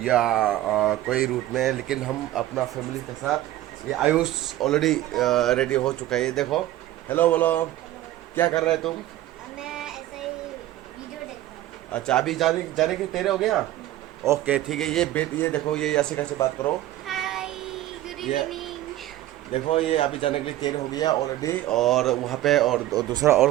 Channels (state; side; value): quieter; left; 14.4 dB